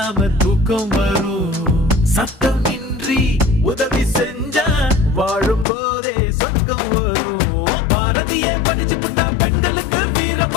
தூக்கம் வரும். சத்தம் இன்றி உதவி செஞ்சா வாழும் போதே சொர்க்கம் வரும். பாரதியே படிச்சு புட்டா பெண்களுக்கு வீரம்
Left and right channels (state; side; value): drops out; right; at 5.7 s